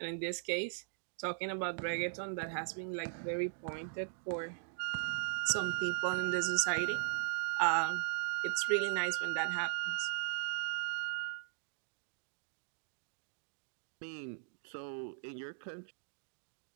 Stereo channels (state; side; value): silent; left; digital silence